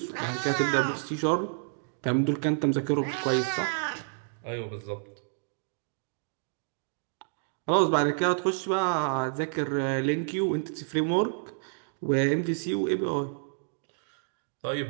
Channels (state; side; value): silent; left; digital silence